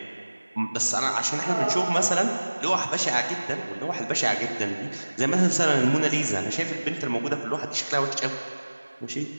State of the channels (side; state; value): both; inverted; correlation -1.00